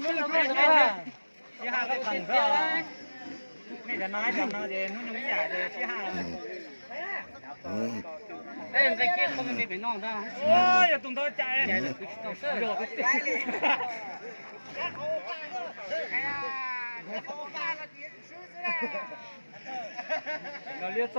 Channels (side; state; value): both; inverted; correlation -1.00